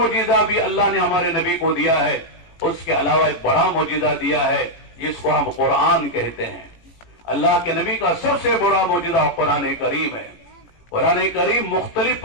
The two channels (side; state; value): right; late; 18 ms